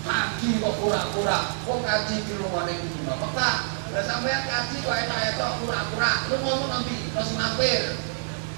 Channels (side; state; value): left; silent; digital silence